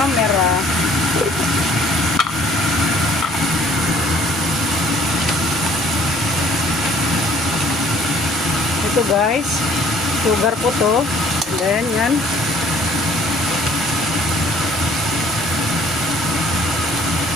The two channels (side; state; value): both; normal; correlation 0.56